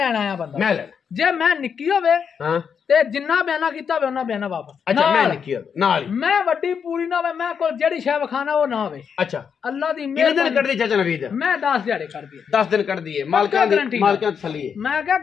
ਆਇਆ ਬੰਦਾ। ਮੈਂ ਲੈ ਜੇ ਮੈਂ ਨਿੱਕੀ ਹੋਵੇ ਹਾਂ ਤੇ ਜਿੰਨਾ ਬਿਆਨਾ ਕੀਤਾ ਹੋਵੇ ਉਹਨਾਂ ਬਿਆਨਾ ਵਾਪਸ। ਅੱਛਾ ਮੈਂ ਨਿੱਕੀ ਹੋਵੇ ਨਾਲ ਹੀ, ਮੈਂ ਵੱਡੀ ਪੂਰੀ ਨਾ ਹੋਵੇ, ਮੈਂ ਕੋਲ ਜਿਹੜੀ ਸ਼ੈ ਵਿਖਾਣਾ ਉਹ ਨਾ ਹੋਵੇ। ਅੱਛਾ ਅੱਲਾ ਦੀ ਕਿੰਨੇ ਦਿਨ ਕੱਢਦੀ ਚਾਚਾ ਨਵੀਦ? ਮੈਂ 10 ਦਿਹਾੜੇ ਕੱਢਦੀ 10 ਦਿਨ ਕੱਢਦੀ ਏ, ਮਾਲਕਾਂ ਦੀ ਤਸੱਲੀ ਏ। ਮੈਂ ਕਿਹਾ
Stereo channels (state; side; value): quieter; right; 6.9 dB